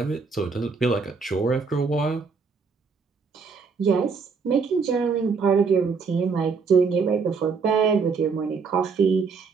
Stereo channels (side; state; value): left; quieter; 5.1 dB